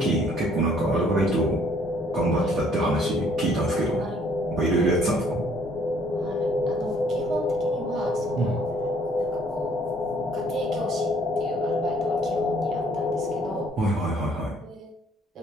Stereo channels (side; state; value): both; normal; correlation 0.62